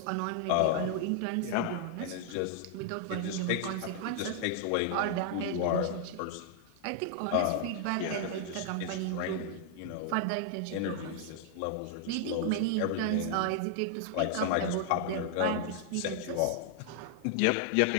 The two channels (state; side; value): different; both; correlation 0.00